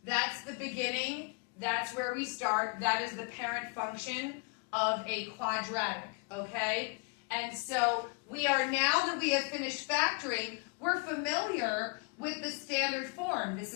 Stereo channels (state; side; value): quieter; right; 32.5 dB